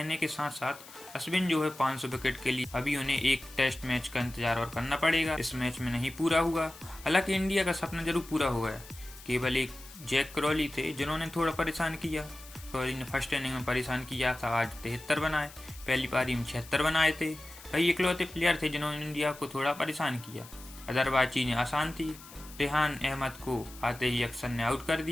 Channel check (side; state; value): left; noise; hiss, 18 dB below the sound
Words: के साथ साथ अश्विन जो है 500 विकेट के लिए अभी उन्हें एक टेस्ट मैच का इंतजार और करना पड़ेगा। इस मैच में नहीं पूरा हुआ। हालांकि इंडिया का सपना जरूर पूरा हो गया। केवल एक जैक क्रॉली थे जिन्होंने थोड़ा परेशान किया। क्रॉली ने फर्स्ट इनिंग में परेशान किया था, आज 73 बनाए, पहली पारी में 76 बनाए थे। वही इकलौते प्लेयर थे जिन्होंने इंडिया को थोड़ा परेशान किया, अदरवाइज चीज़ें आसान थी। रेहान अहमद को आते ही अक्सर ने आउट कर